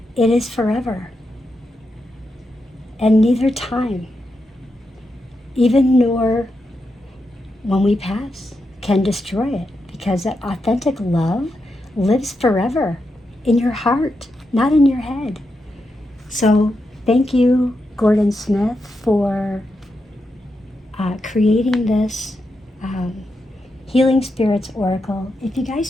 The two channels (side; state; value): both; normal; correlation 0.86